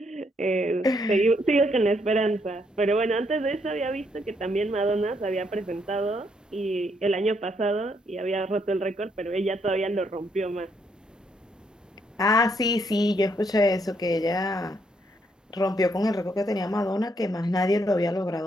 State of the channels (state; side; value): normal; both; correlation 0.74